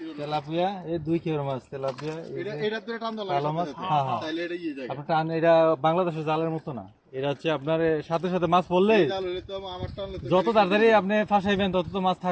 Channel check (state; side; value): identical; both; correlation 1.00